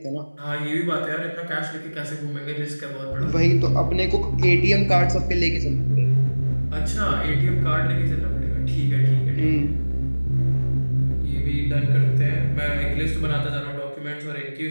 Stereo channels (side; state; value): both; inverted; correlation -1.00